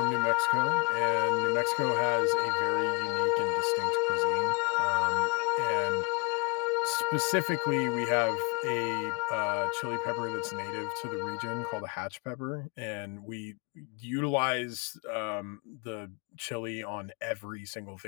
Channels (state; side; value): quieter; right; 32.7 dB